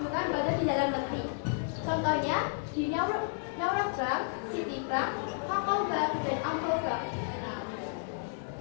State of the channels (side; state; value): right; silent; digital silence